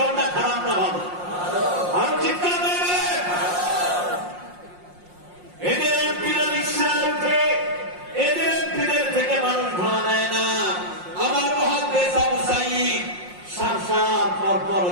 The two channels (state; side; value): late; left; 5.6 ms